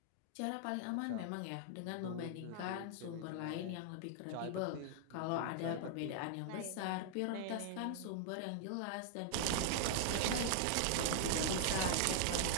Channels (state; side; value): different; both; correlation -0.01